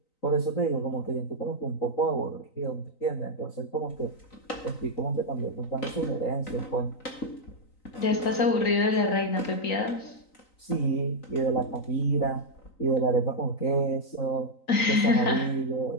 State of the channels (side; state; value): right; late; 3.9 ms